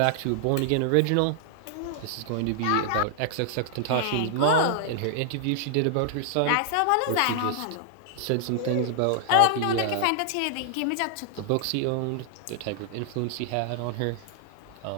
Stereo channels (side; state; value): both; different; correlation -0.01